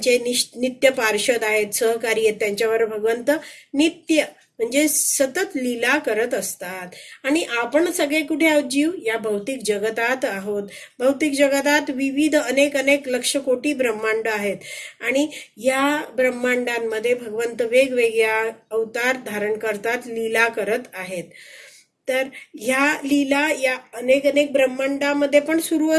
नित्य पार्षद आहेत, सहकारी आहेत, त्यांच्यावर भगवंत नित्य म्हणजे सतत लीला करत असतात. आणि आपण सगळे कुठे आहोत, जीव या भौतिक जगतात आहोत. भौतिक जगतात विविध अनेक लक्ष कोटी ब्रह्मांड आहेत आणि या ब्रह्मांडांमध्ये भगवंत वेगवेगळ्या अवतार धारण करतात, लीला करत आहेत. तर ह्या लीला या अनेक ब्रह्मांडामध्ये पण सुरू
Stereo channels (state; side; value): identical; both; correlation 1.00